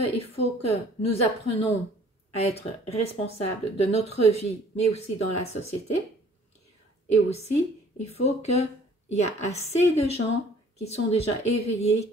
faut que nous apprenions à être responsables de notre vie, mais aussi dans la société. Et aussi, il faut qu'il y ait assez de gens qui sont déjà éveillés,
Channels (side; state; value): both; normal; correlation 0.54